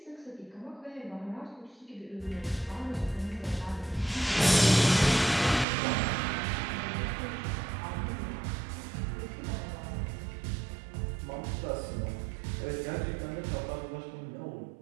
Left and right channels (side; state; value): left; drops out; at 5.7 s